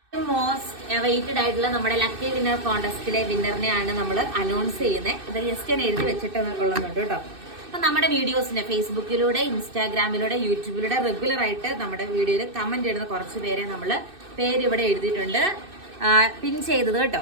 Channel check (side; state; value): left; late; 2.6 ms